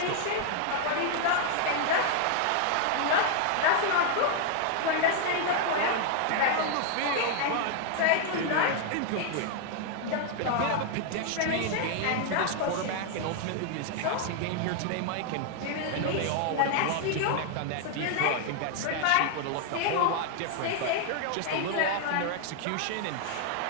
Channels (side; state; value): both; different; correlation 0.00